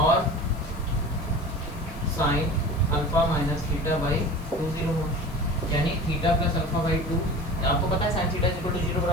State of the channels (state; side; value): noise; left; hiss, 24 dB below the sound